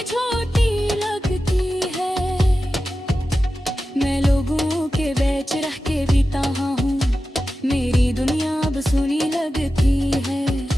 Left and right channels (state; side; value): normal; both; correlation 0.93